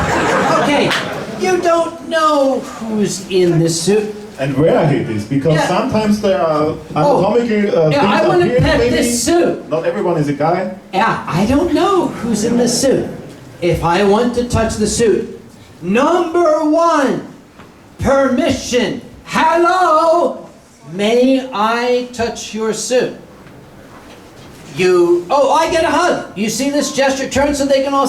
Okay. You don't know who's in this suit. And where it is, because sometimes there are anatomical things I want to pet maybe. this suit. Not everyone is a guy. Yeah, I don't know who's in the suit. If I want to touch the suit, number one, permission. Hello, may I touch your suit? oh, I get a hug. You see this gesture? Turn so they can all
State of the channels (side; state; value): both; identical; correlation 1.00